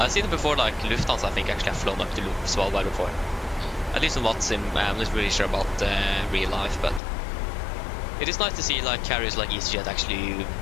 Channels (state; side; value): drops out; right; at 7.0 s